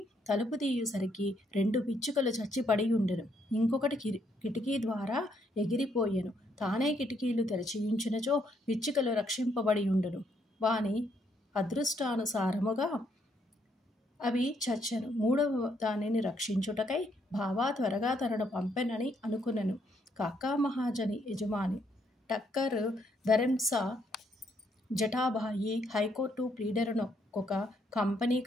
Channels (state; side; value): normal; both; correlation 0.73